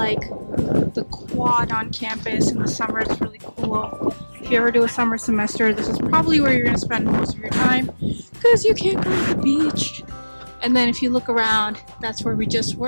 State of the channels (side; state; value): both; inverted; correlation -1.00